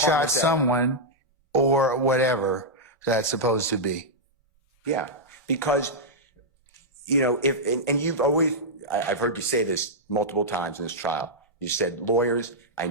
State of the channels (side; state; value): both; normal; correlation -0.07